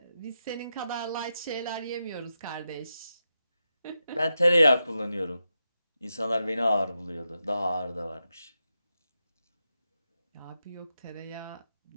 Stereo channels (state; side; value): inverted; both; correlation -0.88